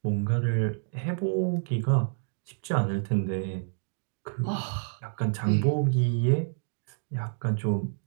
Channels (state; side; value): silent; left; digital silence